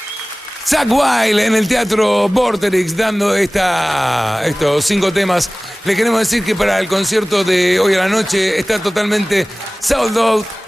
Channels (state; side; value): normal; both; correlation 0.98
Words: Zakk Wylde en el Teatro Vorterix dando estos 5 temas. Le queremos decir que para el concierto de hoy a la noche está totalmente sold out.